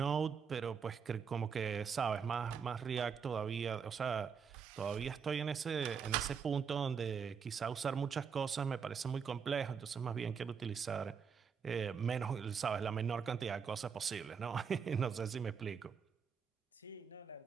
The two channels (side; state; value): left; quieter; 6.4 dB